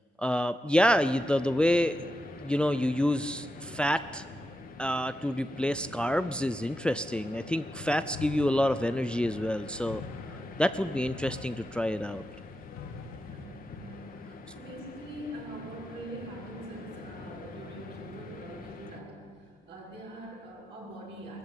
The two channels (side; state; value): both; normal; correlation 0.87